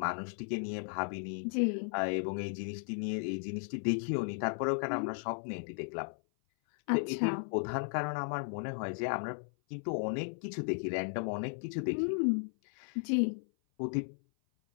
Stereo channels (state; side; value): silent; right; 54 dB below the other